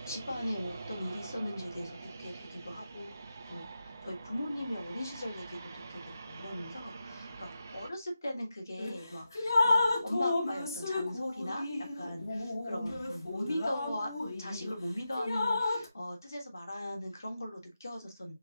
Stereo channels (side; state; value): both; inverted; correlation -0.90